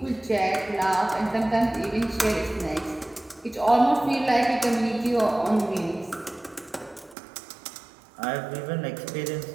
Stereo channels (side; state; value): left; drops out; at 7.2 s